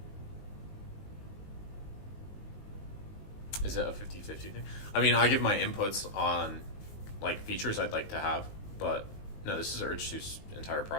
Is it a 50-50 thing? I mean, I give my inputs on like features I'd like to have, but no, this is Urge2's entire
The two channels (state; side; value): late; right; 19 ms